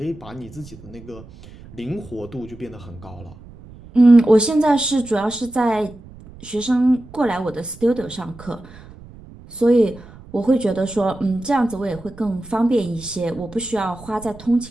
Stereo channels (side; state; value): right; noise; rumble, 19 dB below the sound